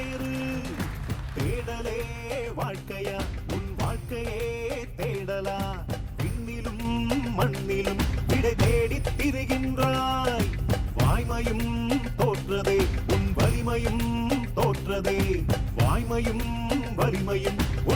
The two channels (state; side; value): identical; both; correlation 1.00